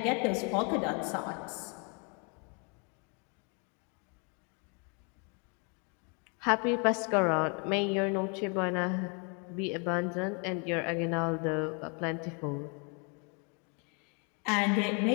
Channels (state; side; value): quieter; right; 35.4 dB